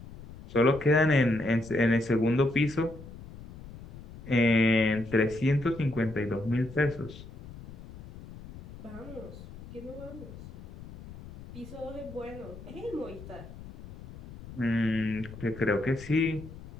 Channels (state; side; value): noise; left; rumble, 15 dB below the sound